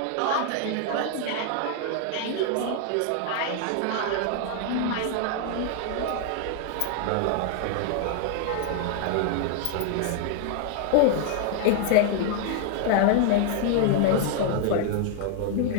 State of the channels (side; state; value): both; different; correlation 0.00